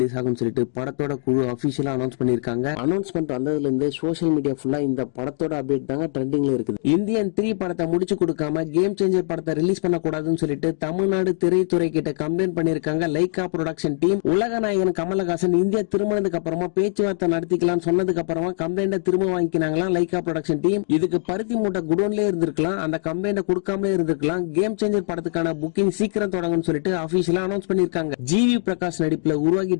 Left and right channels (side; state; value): right; silent; digital silence